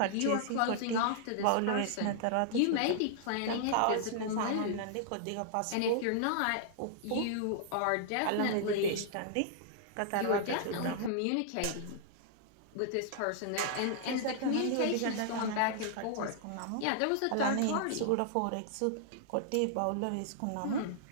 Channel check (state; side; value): different; both; correlation -0.01